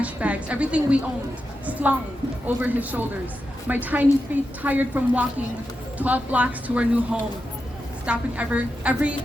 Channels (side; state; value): both; normal; correlation 0.88